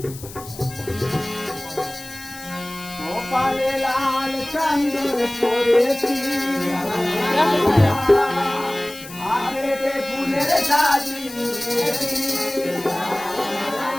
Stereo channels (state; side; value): noise; left; hiss, 16 dB below the sound